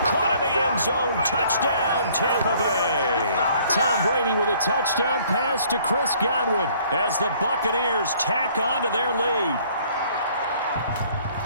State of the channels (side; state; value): both; inverted; correlation -0.59